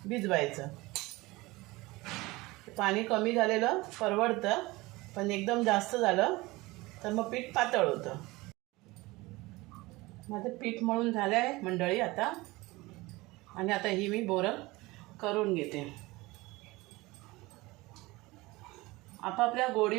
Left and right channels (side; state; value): left; quieter; 21.4 dB